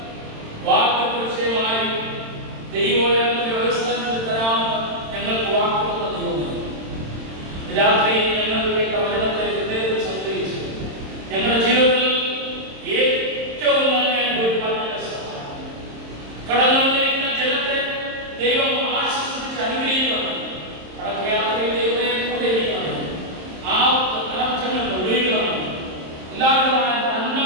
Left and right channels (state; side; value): late; left; 27 ms